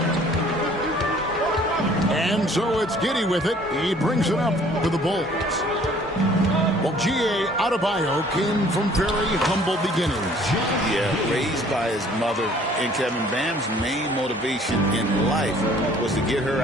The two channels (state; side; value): normal; both; correlation 0.56